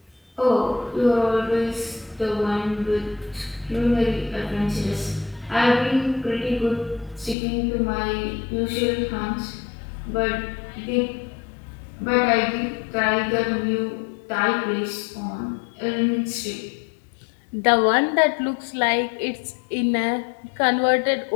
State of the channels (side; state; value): right; drops out; at 7.4 s